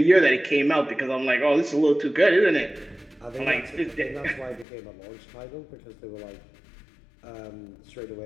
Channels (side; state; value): right; drops out; at 4.7 s